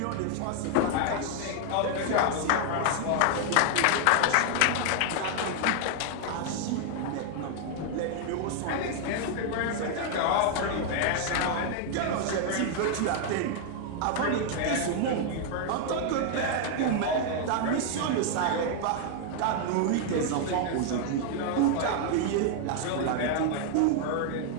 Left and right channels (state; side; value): different; both; correlation 0.00